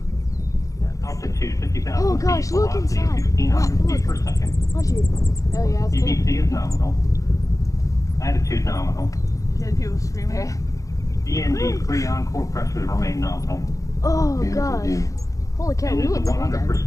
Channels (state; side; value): late; right; 0.16 ms